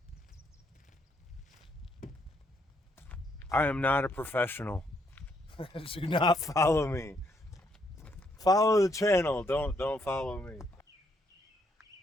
I am not a professional. Do not follow me. Follow the channel, don't follow me.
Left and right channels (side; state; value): both; normal; correlation 0.73